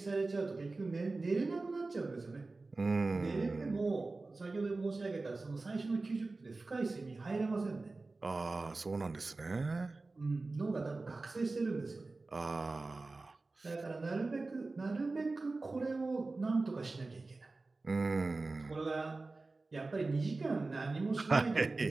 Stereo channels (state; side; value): quieter; left; 3.5 dB